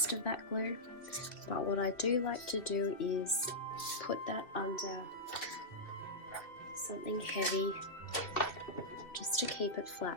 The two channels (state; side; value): late; right; 2.8 ms